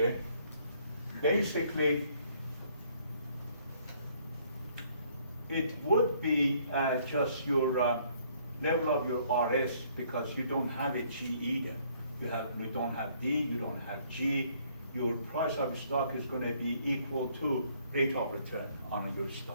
basically, it would be just your level of your RS, because you don't have a G either. You don't have D, you don't have G. Your price of your stock is going to be equal to rate of return on your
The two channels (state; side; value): inverted; both; correlation -0.64